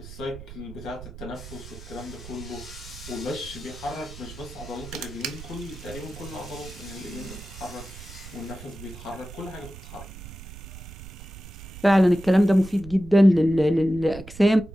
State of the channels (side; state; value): right; noise; rumble, 14 dB below the sound